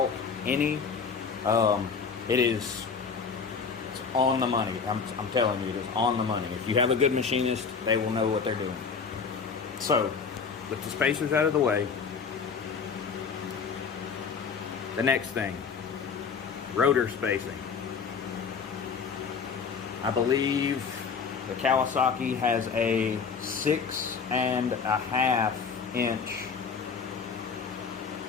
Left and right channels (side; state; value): right; quieter; 5.8 dB